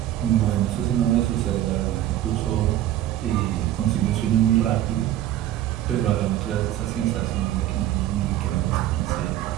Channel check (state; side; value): quieter; left; 12.9 dB